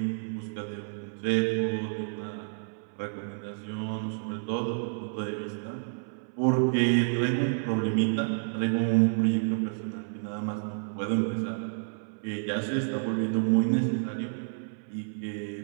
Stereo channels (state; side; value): silent; left; 58 dB below the other